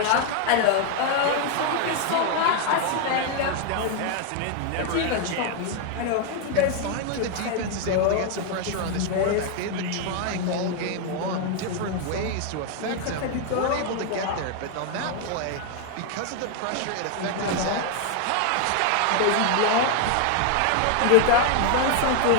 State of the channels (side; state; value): both; different; correlation 0.00